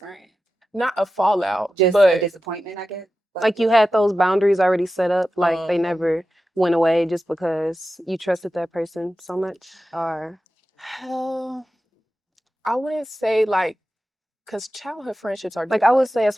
not a fallout, Just a but disappointment, I guess. Like you had those boundaries already set up, like they um, never went away just because you trusted that person so much, or I wouldn't say like because childhood friendships are like I would different. say as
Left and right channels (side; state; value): both; normal; correlation 0.92